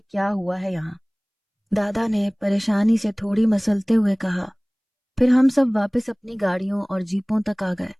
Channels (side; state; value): both; identical; correlation 1.00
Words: کیا ہوا ہے یہاں۔ دادا نے پریشانی سے تھوڑی مسلتے ہوئے کہا۔ پھر ہم سب واپس اپنی گاڑیوں اور جیپوں تک آ گئے۔